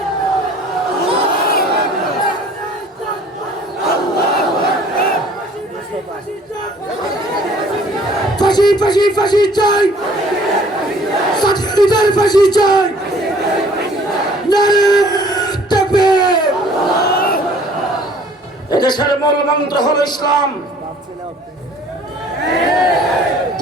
ফাঁসি ফাঁসি ফাঁসি চাই, সাথীদের ফাঁসি চাই। এদেশের মূল মন্ত্র হল ইসলাম।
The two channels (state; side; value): normal; both; correlation 0.54